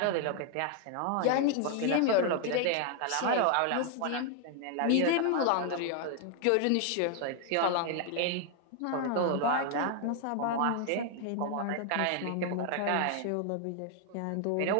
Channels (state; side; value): different; both; correlation 0.00